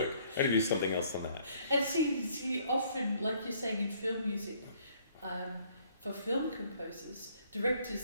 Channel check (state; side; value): inverted; both; correlation -0.63